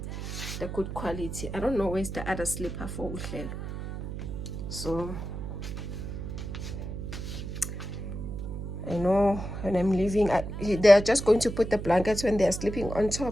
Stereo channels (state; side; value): noise; right; hum, 7 dB below the sound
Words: the good quality. I don't know where's the other slipper for Uhlel. So I know when I'm leaving, they are just going to put the blankets when they are sleeping on